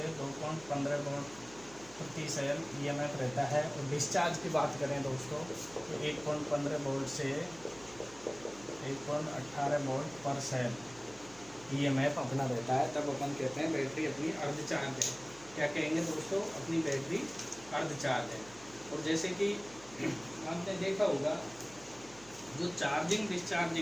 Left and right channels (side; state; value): right; noise; hum, 21 dB below the sound